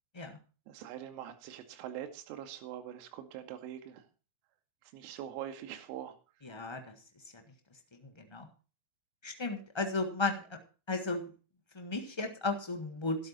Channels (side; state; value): right; late; 1.3 ms